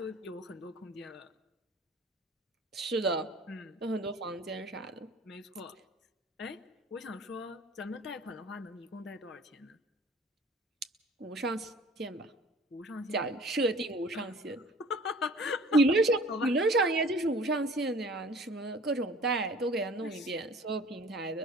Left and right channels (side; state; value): both; normal; correlation 0.47